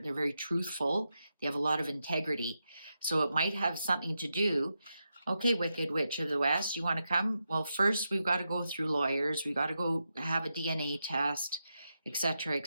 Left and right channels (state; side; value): inverted; both; correlation -0.86